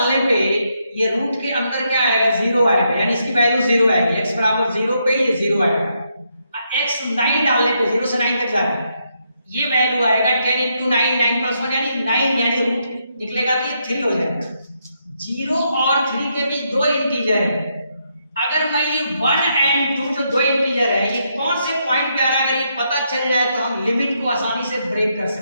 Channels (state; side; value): inverted; both; correlation -0.78